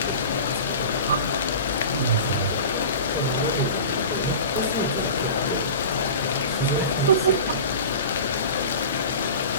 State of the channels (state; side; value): inverted; both; correlation -0.35